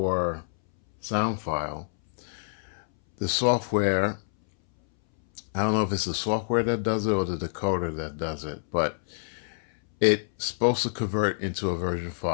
sound file, the software, I don't know if it's the software that does it or the decoder that does it, but it's supposed to convert into a version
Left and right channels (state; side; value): silent; right; 60 dB below the other